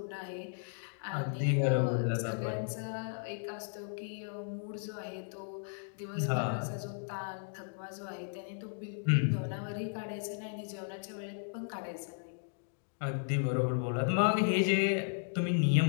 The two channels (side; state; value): right; silent; digital silence